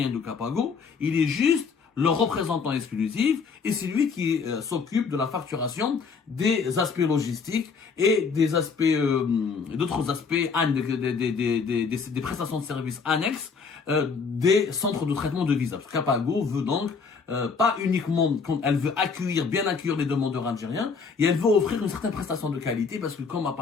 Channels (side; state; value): right; quieter; 5.3 dB